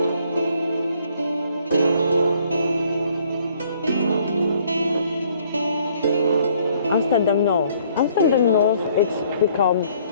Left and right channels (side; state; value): both; inverted; correlation -0.62